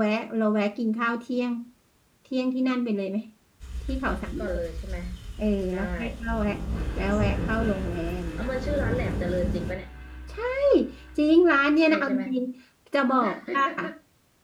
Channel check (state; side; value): identical; both; correlation 1.00